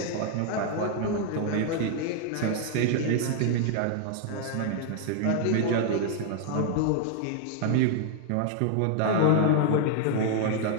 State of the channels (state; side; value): different; both; correlation 0.00